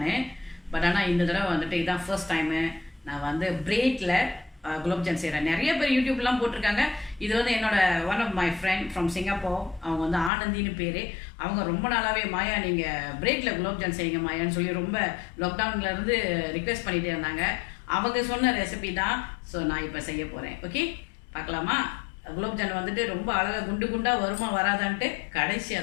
பட் ஆனால் இந்த தடவை வந்துட்டு இதுதான் ஃபர்ஸ்ட் டைமு நான் வந்து பிரெட்டில் குலோப்ஜான் செய்கிறேன். நிறைய பேர் யூடியூப்லாம் போட்டிருக்காங்க. இது வந்து என்னோட one of my friend from Singapore. அவங்க வந்து ஆனந்தின்னு பேர். அவங்க ரொம்ப நாளாகவே மாயா நீங்கள் பிரெட்டில் குலோப்ஜான் செய்யுங்க மாயான்னு சொல்லி ரொம்ப லாக்டவுன்லேருந்து ரிக்வெஸ்ட் பண்ணிகிட்டே இருந்தாங்க. அவங்க சொன்ன ரெசிபி தான். ஸோ நான் இப்போ செய்ய போகிறேன். ஓகே, பார்க்கலாமா? குலோப்ஜான் வந்துட்டு ரொம்ப அழகாக குண்டு குண்டாக வருமா வராதான்ட்டு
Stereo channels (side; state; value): right; drops out; at 10.3 s